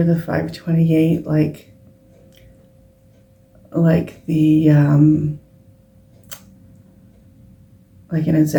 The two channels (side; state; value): both; identical; correlation 1.00